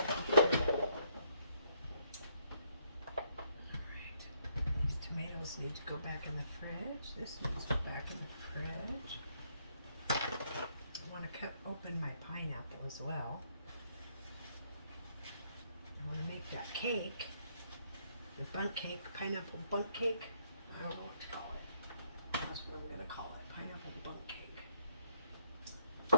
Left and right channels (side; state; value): both; inverted; correlation -0.71